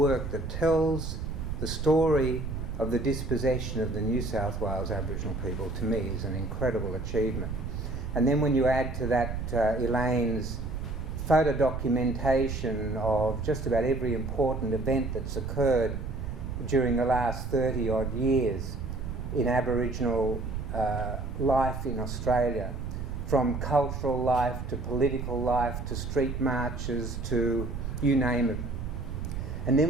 that tells the story of the dispossession of the New South Wales Aboriginal people, to me, is an incredible achievement. And then when you add to that Elaine's photo documentation of just about every important event that's occurred during the last 30 odd years in Aboriginal life in Australia, from cultural life to political life to street marches to you name it. And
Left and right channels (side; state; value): right; noise; rumble, 5 dB below the sound